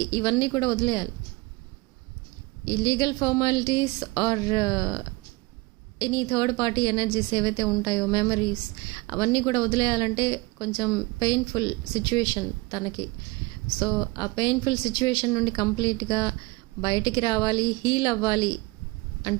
ఇవన్నీ కూడా వదిలేయాలి. ఈ legal formalities or any third party energies ఏవైతే ఉంటాయో, మెమరీస్, అవన్నీ కూడా వదిలేయాలంటే కొంచెం పెయిన్ఫుల్ సిచ్యువేషన్ తనకి. సో ఆ పెయిన్ఫుల్ సిచ్యువేషన్ నుండి కంప్లీట్గా బయటికి రావాలి, హీల్ అవ్వాలి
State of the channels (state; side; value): quieter; left; 23.7 dB